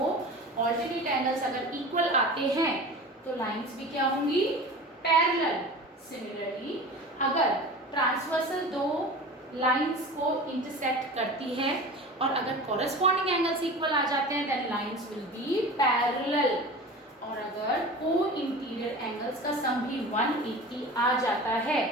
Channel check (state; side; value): normal; both; correlation 0.35